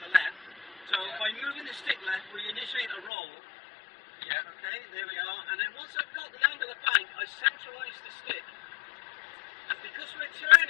left. So by moving the stick left, we initiate a roll. Yeah. Okay, there we are. And then once I've got the angle of bank, I centralise the stick. And because we're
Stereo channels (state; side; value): drops out; right; at 3.1 s